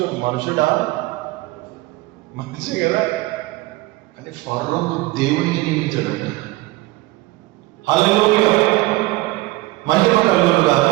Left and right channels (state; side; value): quieter; left; 19.7 dB